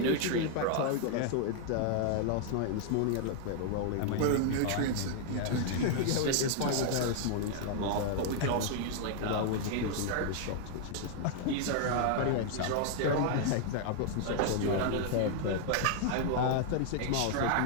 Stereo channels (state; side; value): different; both; correlation 0.00